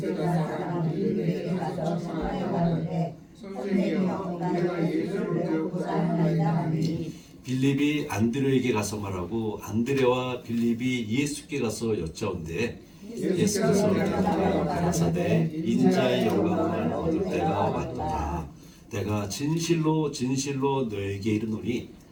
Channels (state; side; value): identical; both; correlation 1.00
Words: 사람들이 내게 가서 청하여가는데 선생님이여 우리가 예수를 배우고자 하나이다 하니 빌립이 안드레에게 가서 말하고 안드레와 빌립이 예수께 가서 여짜온대 예수께서 대답하여 가라사대 인자의 영광을 얻을 때가 왔도다. 내가 진실로 진실로 너에게 이르노니